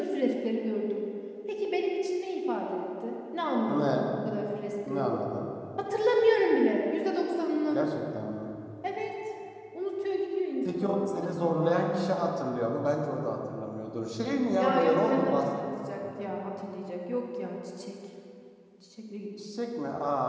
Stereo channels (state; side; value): identical; both; correlation 1.00